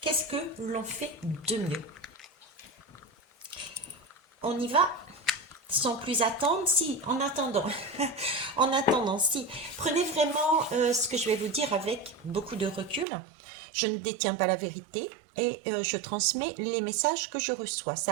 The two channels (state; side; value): drops out; left; at 13.1 s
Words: Qu'est-ce que l'on fait de mieux? On y va sans plus attendre, si, en attendant, en attendant, si, prenez vraiment ce que je vais vous dire avec beaucoup de recul. Je ne détiens pas la vérité et je transmets les messages que je reçois.